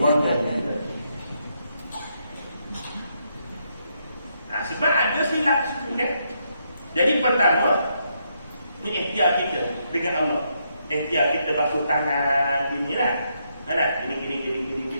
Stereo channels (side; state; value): both; inverted; correlation -0.78